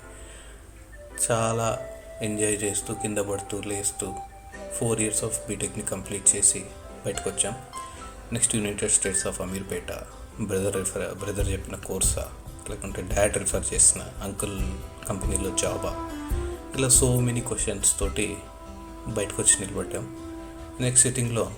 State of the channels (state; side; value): identical; both; correlation 1.00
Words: చాలా ఎంజాయ్ చేస్తూ కింద పడుతూ లేస్తూ 4 years ఆఫ్ బీటెక్ని కంప్లీట్ చేసి బయటకు వచ్చాం. Next United states of Ameerpet. Brother చెప్పిన కోర్సా, లేకుంటే డాడ్ రిఫర్ చేసిన అంకుల్ కంపెనీలో జాబా, ఇలా సో మెనీ క్వశ్చన్స్ తోటి బయటకు వచ్చి నిలబడ్డాం. నెక్స్ట్ సిట్టింగ్లో